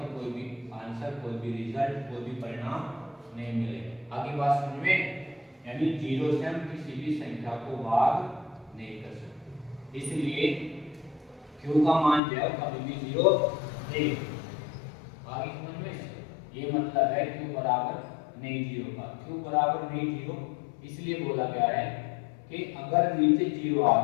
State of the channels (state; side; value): drops out; right; at 12.2 s